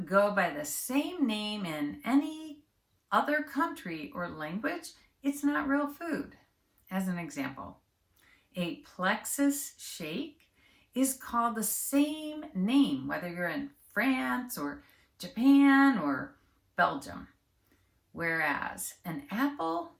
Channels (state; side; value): identical; both; correlation 1.00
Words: go by the same name in any other country or language, it's not real food. As an example, a plexus shake is called the same name, whether you're in France or Japan or Belgium. Whereas an apple